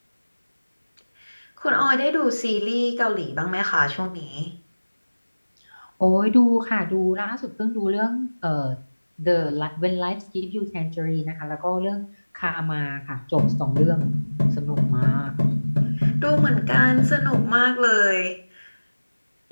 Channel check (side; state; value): both; inverted; correlation -1.00